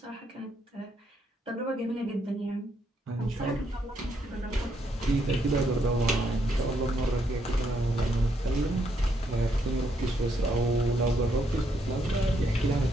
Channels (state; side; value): normal; both; correlation 0.75